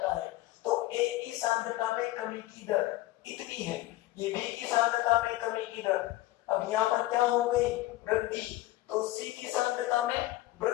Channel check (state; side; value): quieter; right; 17.1 dB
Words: है। तो a की सांद्रता में कमी की दर इतनी है, ये b की सांद्रता में कमी की दर, अब यहाँ पर क्या हो गई, वृद्धि, तो c की सांद्रता में